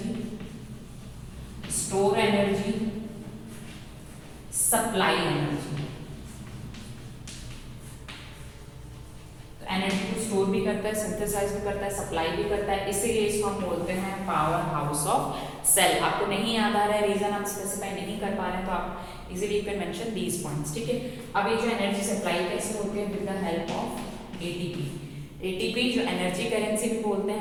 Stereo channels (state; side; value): identical; both; correlation 1.00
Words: store energy, supply energy. तो एनर्जी को स्टोर भी करता है, सिंथेसाइज भी करता है, सप्लाई भी करता है, इसीलिए इसको हम बोलते हैं पावर हाउस ऑफ सेल। आपको नहीं याद आ रहा है, रीजन आप स्पेसिफाई नहीं कर पा रहे हैं, तो आप easily you can mention these points, ठीक है। अब ये जो एनर्जी सप्लाई कैसे होती है, with the help of ATP. ATP जो एनर्जी करेंसी भी बोलते